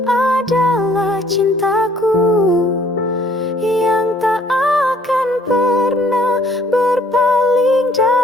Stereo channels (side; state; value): both; normal; correlation 0.60